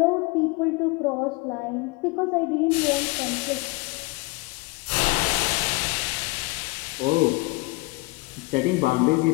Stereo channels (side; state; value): right; quieter; 24.8 dB